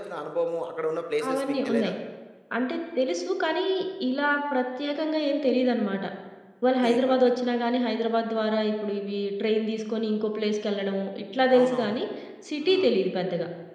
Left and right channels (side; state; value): both; identical; correlation 1.00